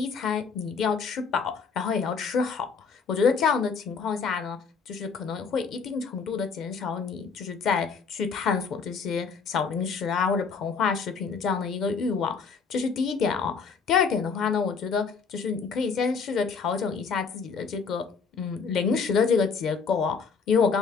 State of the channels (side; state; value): right; quieter; 5.4 dB